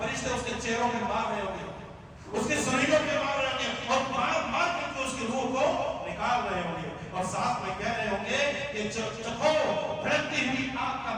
اس کے چہروں پہ مار رہے ہوں گے، اس کے سینوں پہ مار رہے ہوں گے، اور مار کر کے اس کی روح کو نکال رہے ہوں گے، اور ساتھ میں کہہ رہے ہوں گے کہ چکھو بھڑکتی ہوئی آگ کا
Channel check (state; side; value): identical; both; correlation 1.00